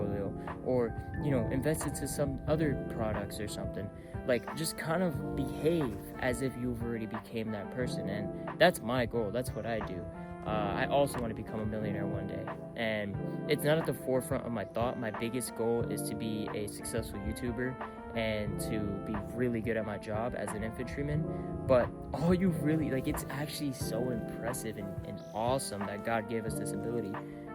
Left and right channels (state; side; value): identical; both; correlation 1.00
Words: or, you know, invest into some other products or something. Like, just kind of behave as if you've already became that person. And that's my goal. That's what I do. I also want to become a millionaire one day, and it's not at the forefront of my thought. My biggest goal is to be a successful YouTuber and to be really good at my job as an infantryman. But all you really, like, it's actually so impressive and awesome that God gave us this ability